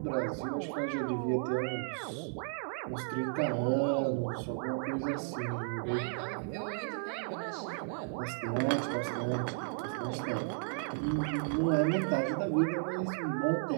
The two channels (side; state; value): left; silent; 55 dB below the other